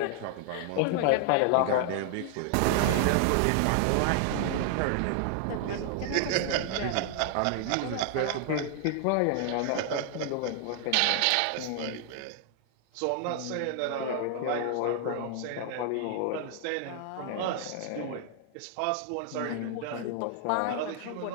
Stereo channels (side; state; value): both; different; correlation 0.00